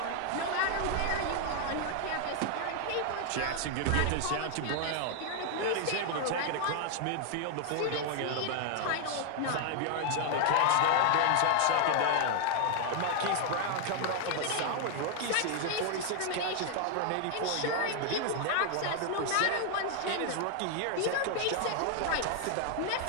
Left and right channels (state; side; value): different; both; correlation 0.00